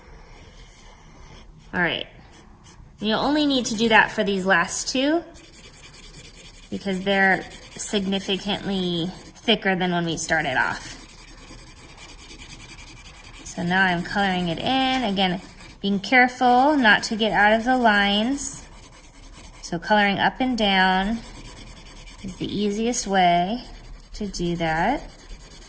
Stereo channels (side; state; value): both; identical; correlation 1.00